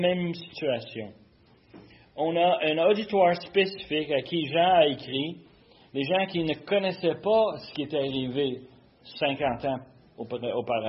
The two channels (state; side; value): identical; both; correlation 1.00